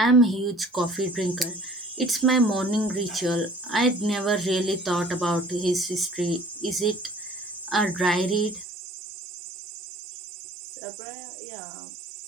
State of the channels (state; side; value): drops out; left; at 8.7 s